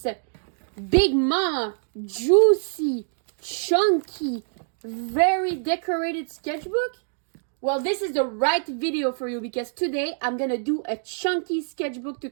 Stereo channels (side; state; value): left; silent; digital silence